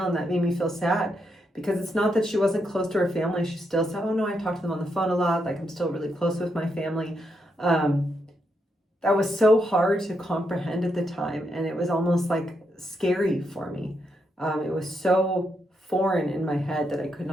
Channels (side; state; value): both; normal; correlation 0.81